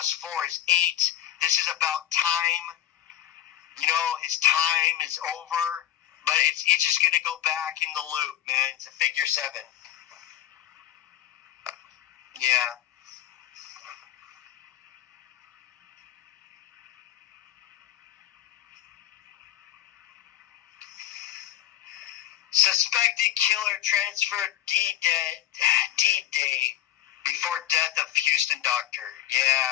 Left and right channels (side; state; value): right; quieter; 12.6 dB